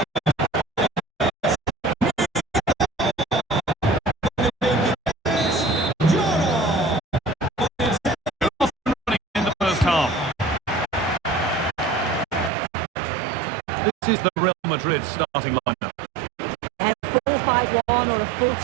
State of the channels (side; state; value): left; drops out; at 12.5 s